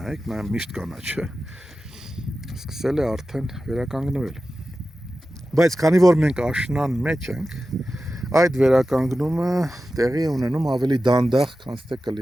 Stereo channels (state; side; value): normal; both; correlation 0.93